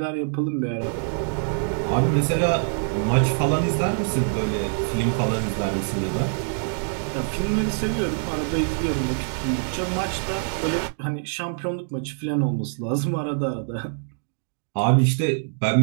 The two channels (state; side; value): silent; left; digital silence